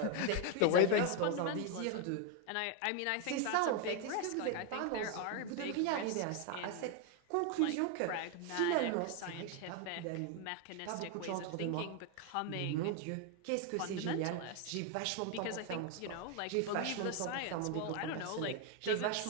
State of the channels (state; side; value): different; both; correlation 0.01